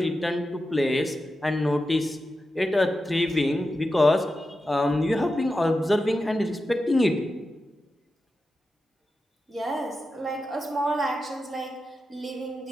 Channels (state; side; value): normal; both; correlation 0.91